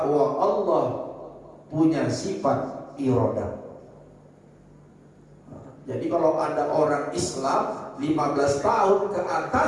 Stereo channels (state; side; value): identical; both; correlation 1.00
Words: Allah punya sifat iradah. Jadi kalau ada orang Islam 15 tahun ke